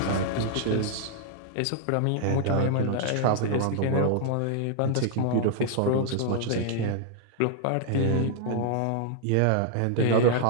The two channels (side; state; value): both; different; correlation -0.01